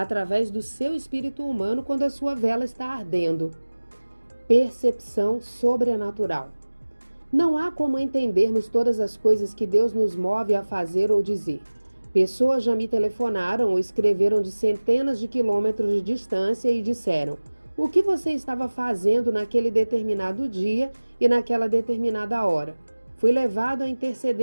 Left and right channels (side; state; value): both; inverted; correlation -1.00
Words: do seu espírito humano quando a sua vela está ardendo. Percepção sobrenatural. Não há como entendermos todas as coisas que Deus nos move a fazer ou dizer. Pessoas já me telefonaram ou escreveram de centenas de quilômetros de distância e disseram: o que você estava fazendo naquele determinado dia e naquela determinada hora? Fui levado a